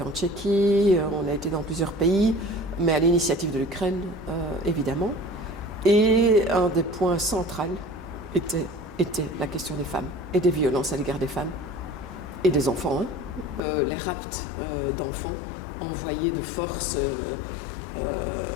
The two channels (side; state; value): right; drops out; at 13.6 s